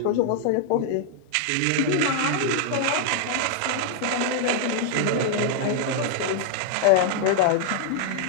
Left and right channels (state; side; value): different; both; correlation 0.00